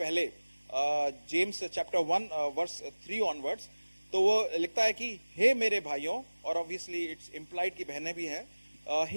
जेम्स चैप्टर 1 वर्स 3 ऑनवर्ड्स, तो वो लिखता है कि हे मेरे भाइयों, और ऑब्वियसली इट्स इंप्लाइड की बहनें भी हैं,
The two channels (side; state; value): both; inverted; correlation -1.00